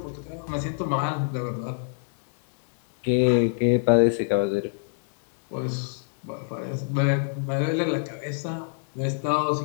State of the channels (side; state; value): right; silent; digital silence